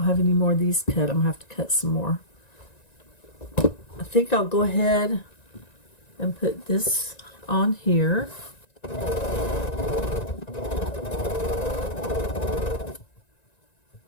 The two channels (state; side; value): late; right; 1.9 ms